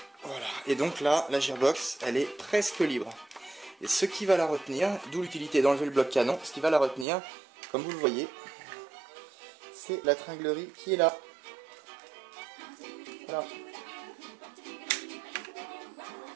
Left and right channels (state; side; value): drops out; left; at 7.1 s